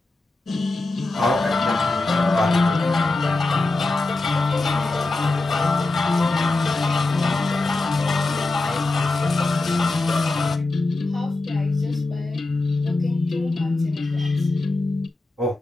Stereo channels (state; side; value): quieter; right; 3.1 dB